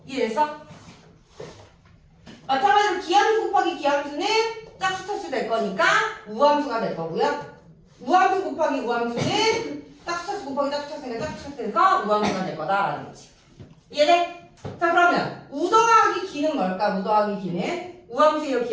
이해됐어? 마찬가지로 기함수 곱하기 기함수는 짝수 차수 될 거니까 우함수가 될 거고요. 우함수 곱하기 우함수는 짝수 차수 곱하기 짝수 차수니까 짝수 차수 돼서 우함수가 될 거다라는 거지. 이해돼? 자, 그러면 우 더하기 기는 뭘까? 우 더하기 기는 우함수예요,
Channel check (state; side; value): identical; both; correlation 1.00